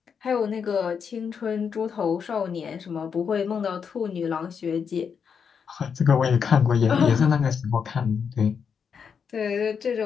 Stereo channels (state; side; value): quieter; right; 6.6 dB